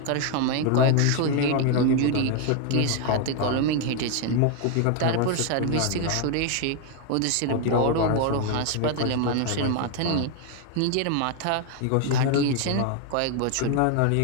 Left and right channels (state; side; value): different; both; correlation 0.01